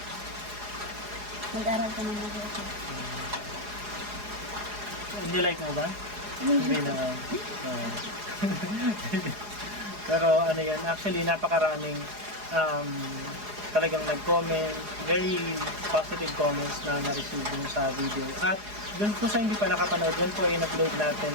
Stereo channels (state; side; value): late; left; 4.8 ms